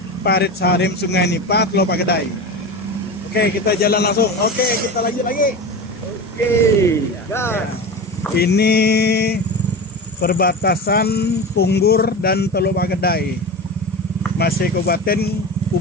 Parit Sarim Sungai Nipa, Teluk Pegedai. Oke, kita jalan langsung. Oke, kita lanjut lagi. Oke, ya. Ini perbatasan Punggur dan Teluk Pegedai, masih Kabupaten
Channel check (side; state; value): both; normal; correlation 0.27